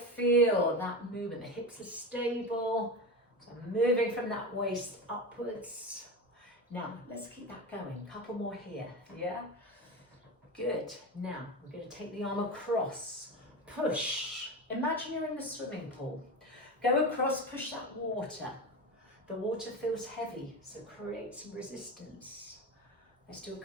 that movement. The hips are stable. So I'm moving from that waist upwards. Now, let's keep that going. Couple more here, yeah? Good. Now, we're going to take the arm across. Push. Imagine you're in the swimming pool. Go across, push that water. The water feels heavy, so create some resistance. Let's do a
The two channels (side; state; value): both; normal; correlation 0.23